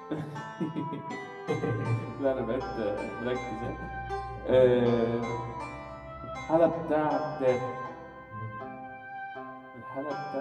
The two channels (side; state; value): both; identical; correlation 1.00